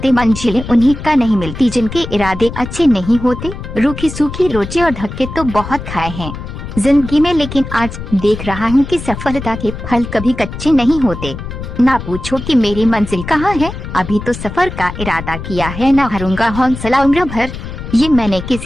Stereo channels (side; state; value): left; noise; rumble, 9 dB below the sound